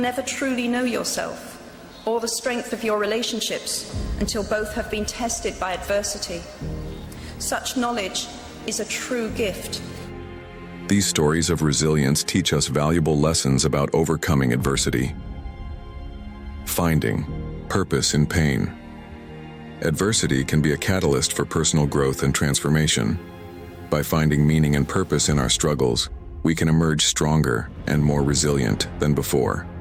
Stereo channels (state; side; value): identical; both; correlation 1.00